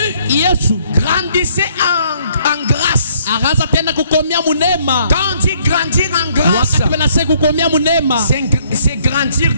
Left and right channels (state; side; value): inverted; both; correlation -0.65